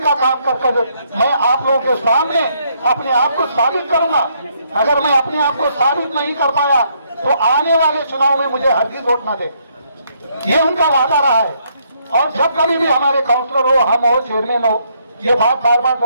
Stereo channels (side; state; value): both; inverted; correlation -0.72